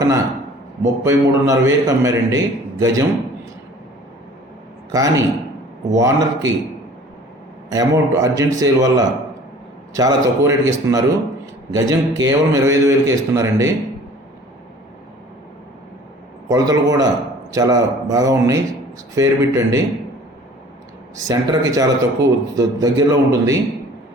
33,500 అమ్మారండి గజం. కానీ ఓనర్కి అమౌంట్ అర్జెంట్ సేల్ వల్ల చాలా తక్కువ రేటుకి ఇస్తున్నారు. గజం కేవలం 25,000కి ఇస్తున్నారండి. కొలతలు కూడా చాలా బాగా ఉన్నాయి. స్క్వేర్ బిట్ అండి. సెంటర్కి చాలా తక్కువ దగ్గరలో ఉంటుంది.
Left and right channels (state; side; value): normal; both; correlation 0.49